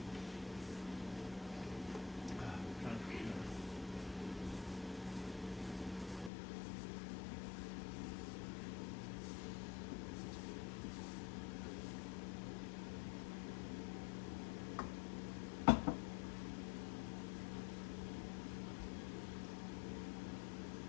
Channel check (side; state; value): right; drops out; at 6.3 s